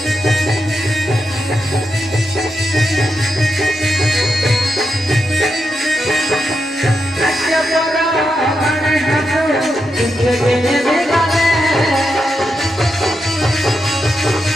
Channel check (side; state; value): both; normal; correlation 0.85